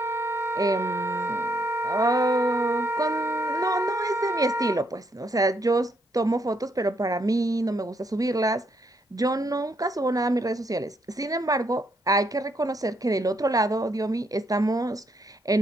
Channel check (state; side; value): normal; both; correlation 0.74